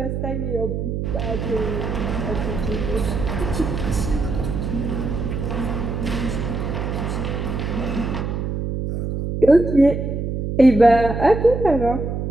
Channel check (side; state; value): right; noise; hum, 3 dB below the sound